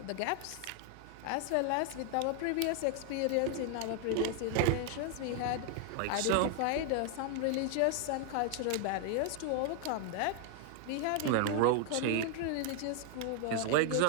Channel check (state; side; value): different; both; correlation 0.00